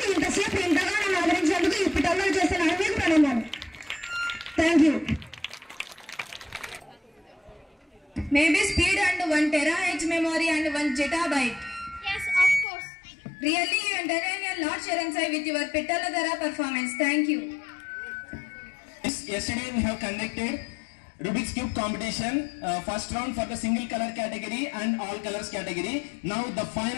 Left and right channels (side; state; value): right; drops out; at 12.7 s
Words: ఇంతసేపు ఇంతగా నన్ను ఆదరించేందుకు ఈ పిల్లలు చేస్తున్న మీకు ప్రణామాలు. Thank you. Maybe speed and 1 terahertz memory and 1 zettabyte. Yes, of course. Really, you entertain a lot, Sharan Sai, with your Pitaladara performance. Thank you. Yesterday we have conducted Rubik's Cube competition, first round for the single color category and all colors category. Now the